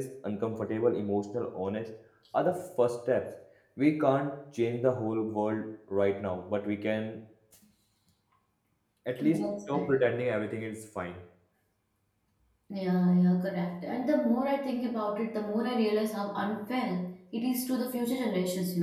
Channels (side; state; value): both; identical; correlation 1.00